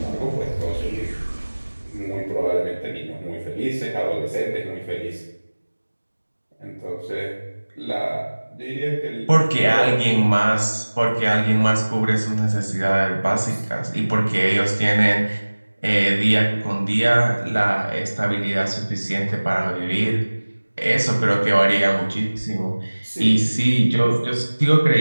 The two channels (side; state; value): both; inverted; correlation -1.00